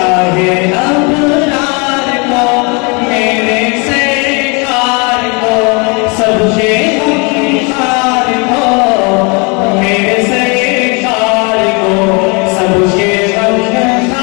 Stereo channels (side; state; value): right; quieter; 31.2 dB